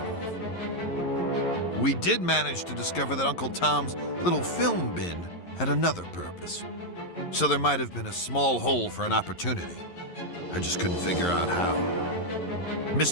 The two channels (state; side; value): late; right; 11 ms